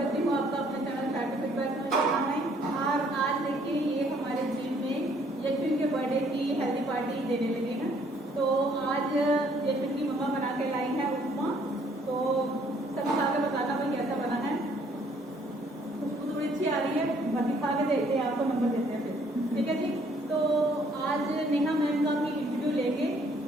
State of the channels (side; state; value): both; normal; correlation 0.63